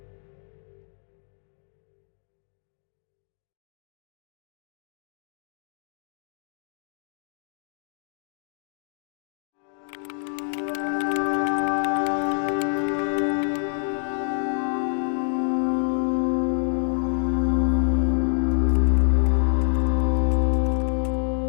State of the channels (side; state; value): right; silent; digital silence